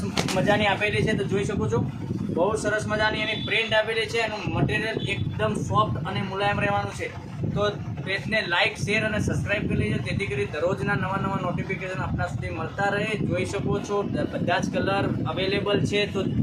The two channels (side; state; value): both; identical; correlation 1.00